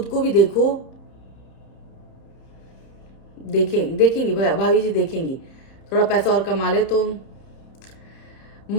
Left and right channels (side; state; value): right; late; 30 ms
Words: को भी देखो। देखेंगी भाभी जी, देखेंगी, थोड़ा पैसा और कमा ले तो।